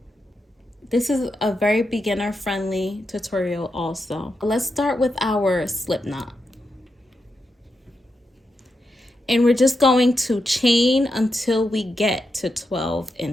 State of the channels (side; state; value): both; normal; correlation 0.86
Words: This is a very beginner friendly tutorial also. Let's start with our slip knot. And we're just going to chain until we get to 12